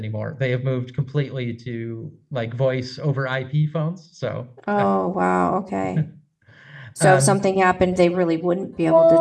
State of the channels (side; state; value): both; identical; correlation 1.00